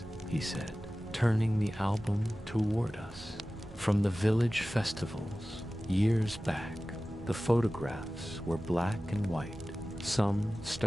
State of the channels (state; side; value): normal; both; correlation 0.96